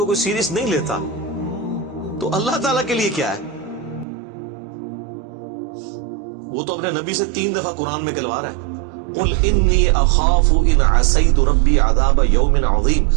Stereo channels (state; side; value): drops out; left; at 4.0 s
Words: کوئی سیریس نہیں لیتا تو اللہ تعالیٰ کے لیے کیا ہے؟ وہ تو اپنے نبی سے 3 دفعہ قرآن میں کہلوا رہا ہے، قل انی اخاف ان عصیت ربی عذاب یوم عظیم،